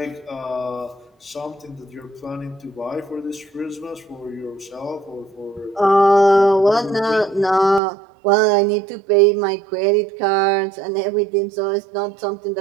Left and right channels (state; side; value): drops out; left; at 7.8 s